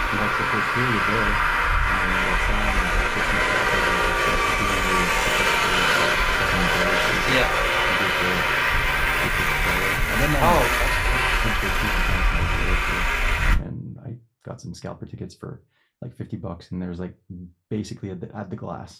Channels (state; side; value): identical; both; correlation 1.00